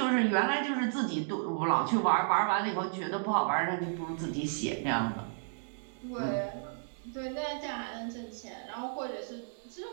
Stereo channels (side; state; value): left; silent; digital silence